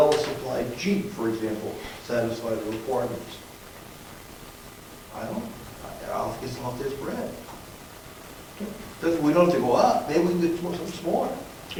Jeep, for example, satisfy the requirements? I don't, I'll guess I'll have this Brad. We don't have to go up, maybe we can get something smaller.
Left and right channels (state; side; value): identical; both; correlation 1.00